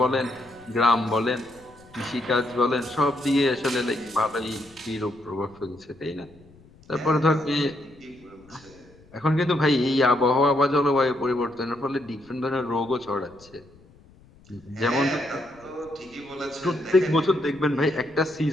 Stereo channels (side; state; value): left; noise; rumble, 26 dB below the sound